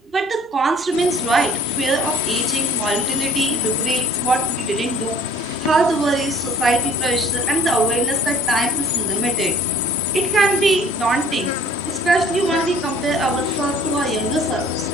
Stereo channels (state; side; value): normal; both; correlation 0.52